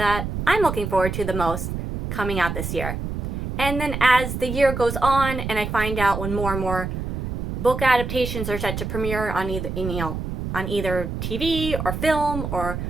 I'm looking forward to the most coming out this year. And then as the year goes on and I find out when more and more book adaptations are set to premiere on either TV or film or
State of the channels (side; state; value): right; noise; rumble, 4 dB below the sound